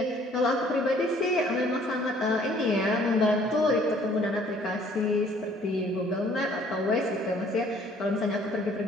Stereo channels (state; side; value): normal; both; correlation 0.58